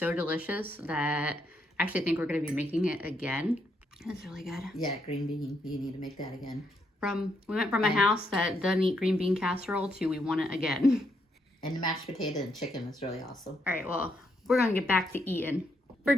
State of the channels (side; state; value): both; normal; correlation 0.77